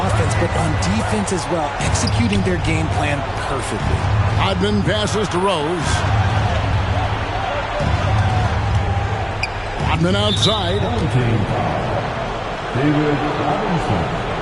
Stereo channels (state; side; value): identical; both; correlation 1.00